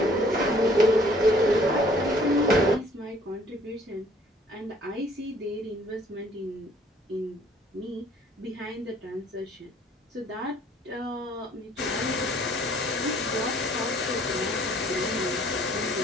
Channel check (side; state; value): both; normal; correlation 0.59